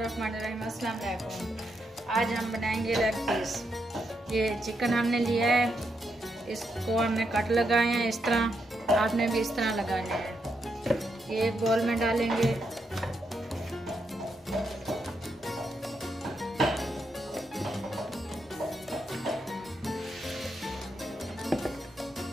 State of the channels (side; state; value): both; normal; correlation 0.81